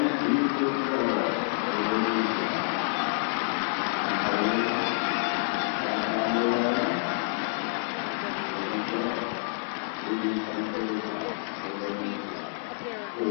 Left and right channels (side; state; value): right; silent; 59 dB below the other